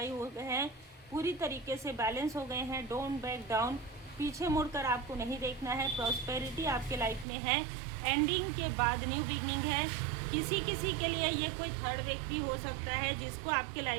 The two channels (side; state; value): left; drops out; at 7.2 s